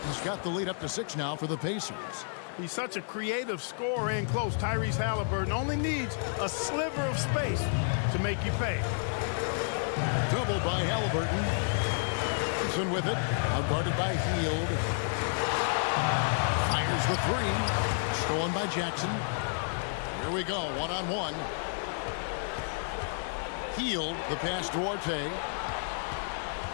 got the lead up to 6 now for the Pacers. He's such a creative scorer in close. Tyrese Halliburton only needs a sliver of space to make you pay. Double by Halliburton. Thompson with it. Outguarded by Hield. Fires the 3. Stolen by Jackson. Here we go. 1-on-1. Hield. The pass to Duarte.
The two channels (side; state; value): right; silent; digital silence